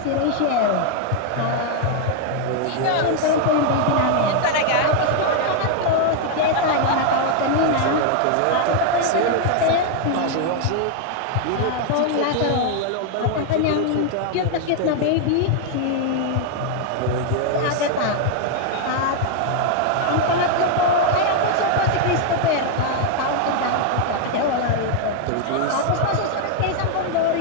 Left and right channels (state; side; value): different; both; correlation 0.00